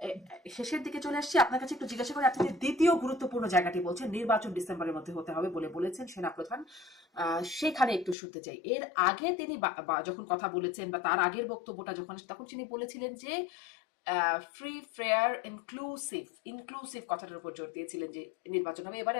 শেষের দিকে চলে আসছি। আপনার কাছে একটু জিজ্ঞাসা করি, আপনি যে দ্বিতীয় গুরুত্বপূর্ণ জায়গাটি বলছেন নির্বাচন ডিসেম্বরের মধ্যে হতে হবে বলে বলেছেন সেনাপ্রধান, সেখানে একটু শুনতে চাই। এর আগে তিনি যখন কথা বলেছেন বা তার আগের বক্তব্যটা যখন, তখন তিনি বলেছিলেন যে ফ্রি ফেয়ার ইনক্লুসিভ, ইনক্লুসিভ কথাটার উপর জোর দিয়েছিলেন যে নির্বাচন হবে। এবারে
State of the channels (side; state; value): right; drops out; at 8.2 s